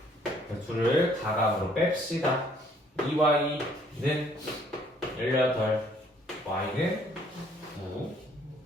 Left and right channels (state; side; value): normal; both; correlation 0.62